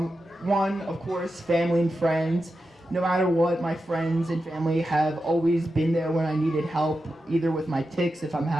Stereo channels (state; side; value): normal; both; correlation 0.90